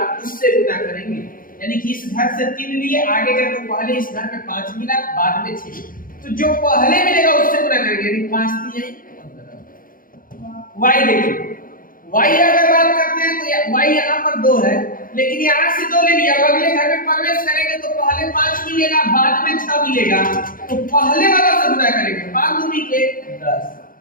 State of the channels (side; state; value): right; late; 0.41 ms